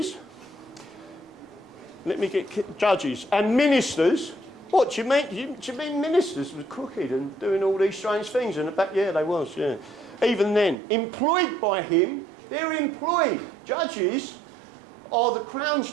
Let me get judges and ministers. What do you mean? Do you mean ministers were crooked and doing all these strange things in the back? Yeah, they was. Yeah. Even then, employed by him, they're employed. Judges are the Crown's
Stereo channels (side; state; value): left; drops out; at 10.8 s